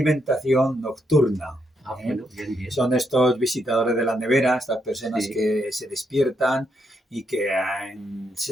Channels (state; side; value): normal; both; correlation 0.79